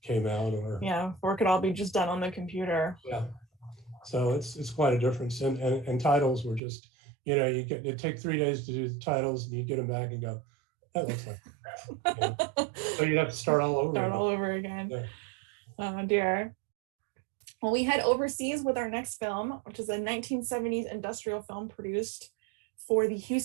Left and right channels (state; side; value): drops out; left; at 6.6 s